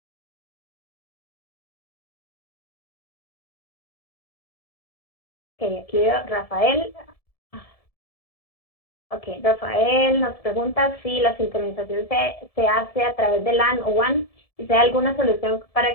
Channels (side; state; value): right; late; 1.7 ms